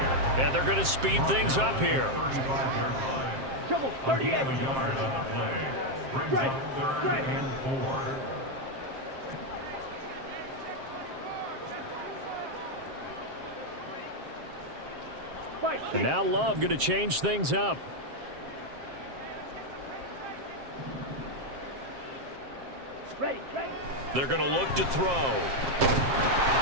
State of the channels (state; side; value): late; left; 7.5 ms